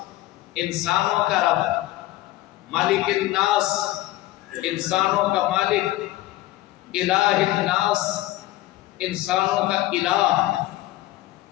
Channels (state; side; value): quieter; right; 16.8 dB